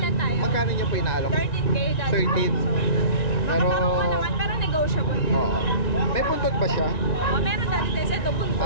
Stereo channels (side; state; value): right; late; 1.9 ms